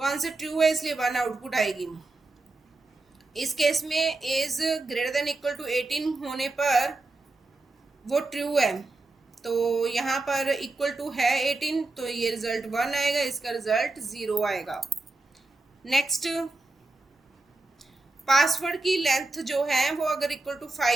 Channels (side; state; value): left; quieter; 3.1 dB